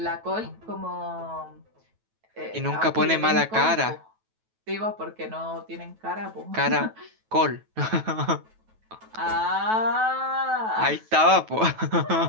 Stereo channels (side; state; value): left; late; 9.2 ms